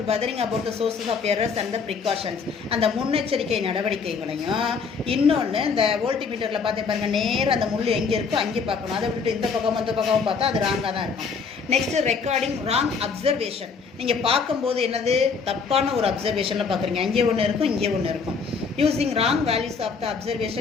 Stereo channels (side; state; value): right; quieter; 5.3 dB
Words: bothering about the sources of errors and the precautions. அந்த முன்னெச்சரிக்கை நடவடிக்கைகளையும் இன்னொன்று இந்த வோல்ட்மீட்டரில் பார்த்து பாருங்கள், நேரம் அந்த முள் எங்கே இருக்கோ அங்கே பார்க்கணும். அதை விட்டு இந்த பக்கம் அந்த பக்கமும் பார்த்தா அது ராங்காக தான் இருக்கும். Next recording wrong observation. நீங்கள் பார்க்கும்போது என்னது தப்பான ஒரு அப்சர்வேஷனில் பார்க்குறீங்க, அங்கே ஒன்று இருக்கும் இங்கே ஒன்று இருக்கும். Using wrong values of the